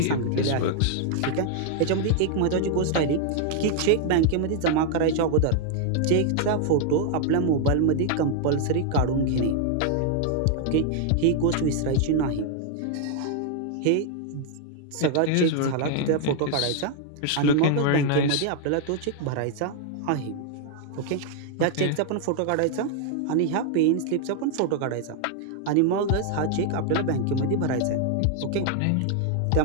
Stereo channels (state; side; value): different; both; correlation 0.00